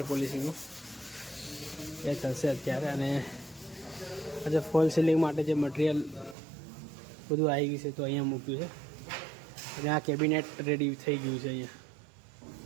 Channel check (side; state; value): left; drops out; at 6.4 s